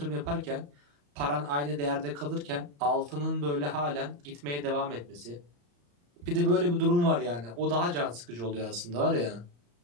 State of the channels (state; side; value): late; left; 34 ms